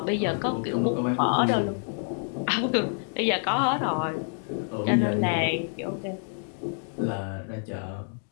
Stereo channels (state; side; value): silent; right; 60 dB below the other